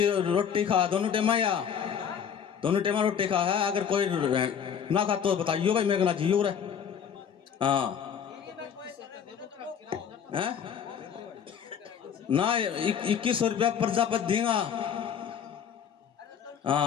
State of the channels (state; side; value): quieter; right; 7.8 dB